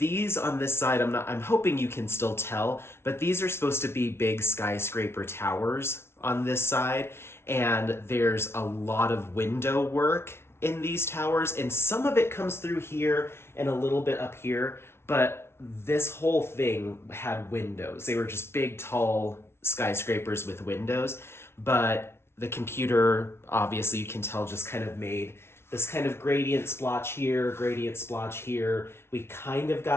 on this side. I'm hoping you can still tell, but these are supposed to be big skyscraper towers on this side, and there's a lot of window work in these towers, and some of it comes through here and a little bit up here, but this whole thing had windows. They were just big, tall skyscrapers with windows, but the computer, obviously you can tell, just kind of made this kind of gradient splotch here, gradient splotch here. We kind of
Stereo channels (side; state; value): right; late; 0.12 ms